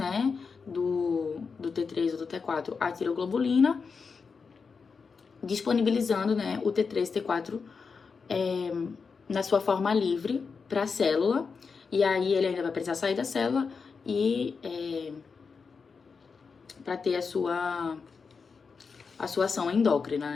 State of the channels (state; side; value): quieter; right; 5.2 dB